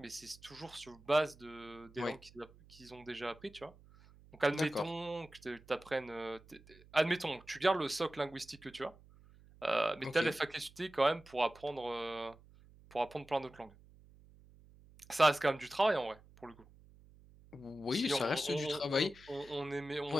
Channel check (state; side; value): noise; right; hum, 24 dB below the sound